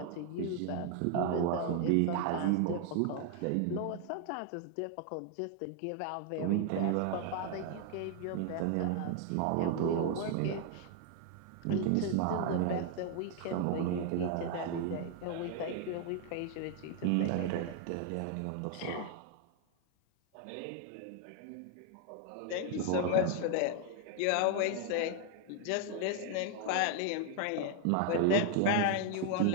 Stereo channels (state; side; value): different; both; correlation 0.00